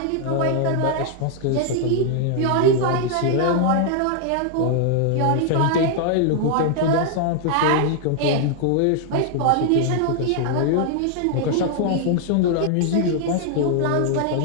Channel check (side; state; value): both; different; correlation 0.00